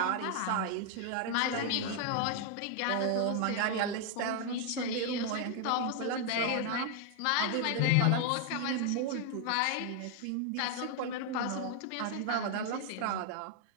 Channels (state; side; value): different; both; correlation 0.00